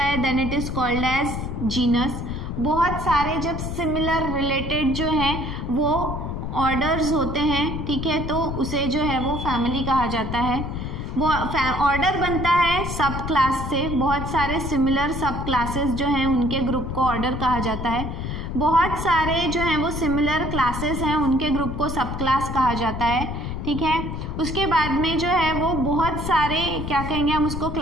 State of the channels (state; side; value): noise; left; rumble, 5 dB below the sound